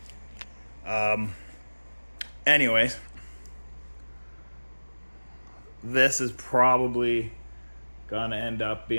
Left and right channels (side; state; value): both; inverted; correlation -1.00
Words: Anyways, this is probably gonna end up